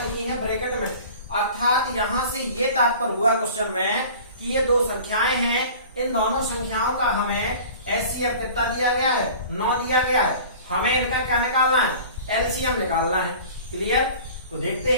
है ब्रैकेट में, अर्थात यहाँ से ये तात्पर्य हुआ क्वेश्चन में कि ये दो संख्याएं हैं, इन दोनों संख्याओं का हमें HCF कितना दिया गया है, 9 दिया गया है। हमें इनका क्या निकालना है, LCM निकालना है। क्लियर। तो देखते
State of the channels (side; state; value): both; inverted; correlation -0.43